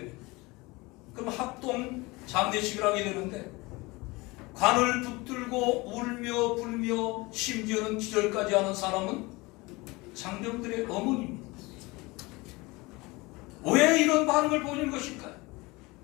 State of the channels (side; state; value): right; quieter; 23.5 dB